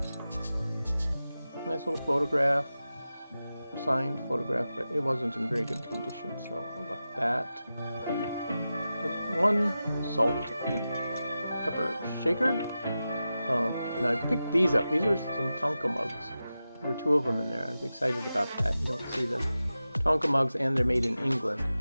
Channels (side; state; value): both; inverted; correlation -0.93